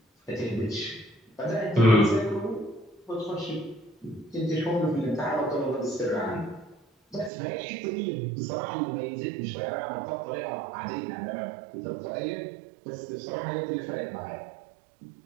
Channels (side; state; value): left; drops out; at 7.3 s